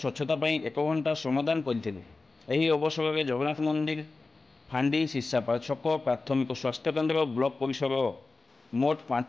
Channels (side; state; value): right; quieter; 3.6 dB